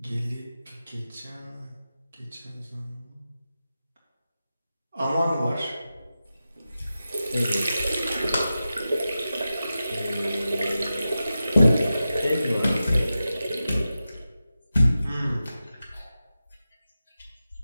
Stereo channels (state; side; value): inverted; both; correlation -0.93